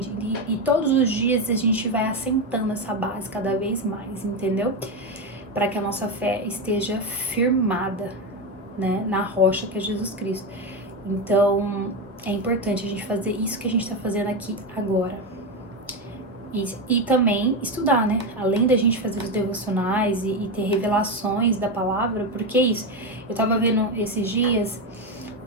E todos os dias a gente vai assentando essa base cada vez mais, entendeu? Para que a nossa fé esteja firmada, né, na rocha que é Jesus Cristo. Então, é importante a gente fazer isso que a gente tá fazendo aqui agora. E também estudar, né? Além da gente fazer os devocionais e ter revelações da palavra, porque é isso. Eu tava vendo esses dias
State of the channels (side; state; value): both; normal; correlation 0.13